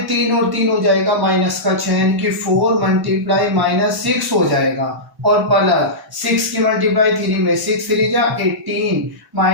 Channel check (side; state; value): both; normal; correlation -0.15